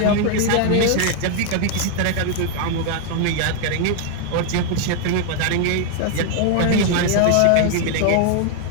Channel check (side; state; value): both; different; correlation 0.00